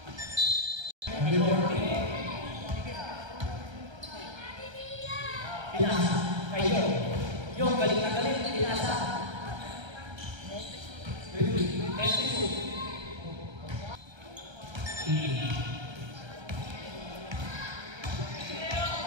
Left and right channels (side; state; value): left; late; 1.3 ms